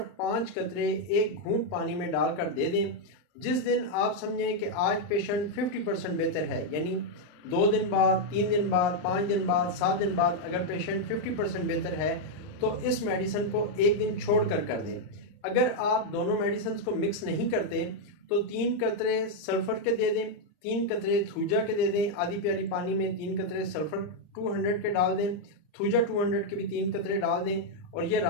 5 कतरे एक घूंट पानी में डालकर दे दें। जिस दिन आप समझें कि आज पेशेंट 50% बेहतर है, यानी 2 दिन बाद, 3 दिन बाद, 5 दिन बाद, 7 दिन बाद अगर पेशेंट 50% बेहतर है तो इस मेडिसिन को एक दिन छोड़ कर दें। अगर आप दोनों मेडिसिन को मिक्स नहीं करते तो 3 कतरे सल्फ़र के दे दें, 3 कतरे थूजा के दे दें। आधी प्याली पानी में 3 कतरे सल्फ़र 200 के डाल दें, थूजा 200 के भी 3 कतरे डाल दें और ये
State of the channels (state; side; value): late; right; 39 ms